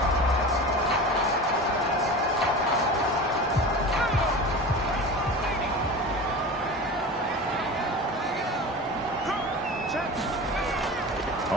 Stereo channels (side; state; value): both; normal; correlation 0.32